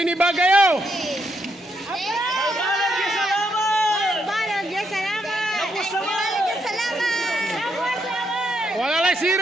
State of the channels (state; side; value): normal; both; correlation 0.78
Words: Bagayo. Wala lang